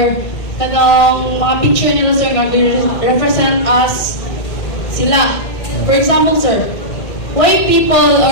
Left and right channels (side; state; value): right; late; 1.6 ms